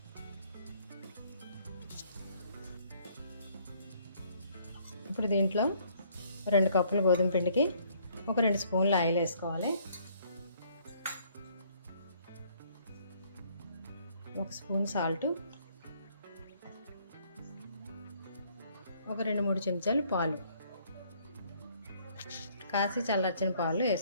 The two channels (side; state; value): both; inverted; correlation -0.63